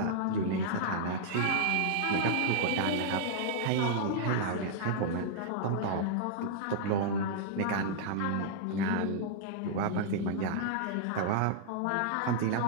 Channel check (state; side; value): different; both; correlation -0.01